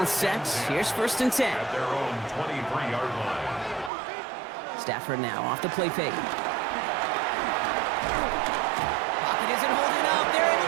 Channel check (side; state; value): left; drops out; at 3.9 s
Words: set. Here's 1st and 10. At their own 23-yard line. Stafford now off the play fake. Pocket isn't holding up. They're